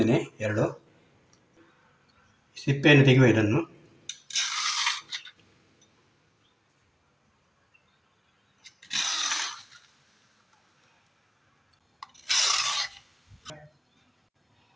2. ಸಿಪ್ಪೆಯನ್ನು ತೆಗೆಯುವ ಇದನ್ನು.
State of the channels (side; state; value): both; identical; correlation 1.00